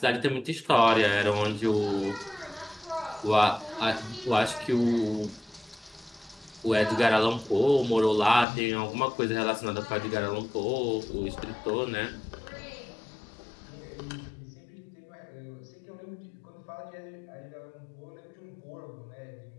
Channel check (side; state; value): right; drops out; at 8.5 s